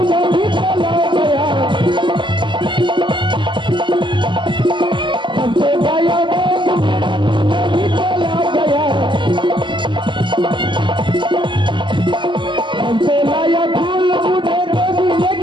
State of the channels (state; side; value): late; left; 0.23 ms